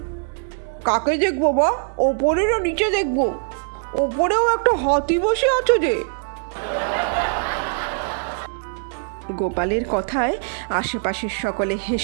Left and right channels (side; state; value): left; silent; digital silence